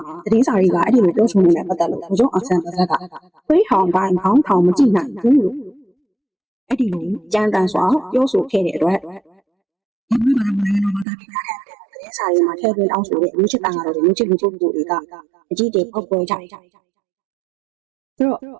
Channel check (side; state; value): left; drops out; at 11.1 s